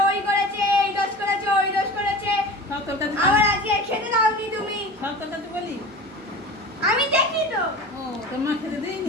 ওই করেছে, এই দোষ করেছে ওই দোষ করেছে। আবার আজকে খেতে দাওনি তুমি। সব কথা তো বলি আমি দেখি তো। ও তোর মা খেতে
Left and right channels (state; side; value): normal; both; correlation 0.35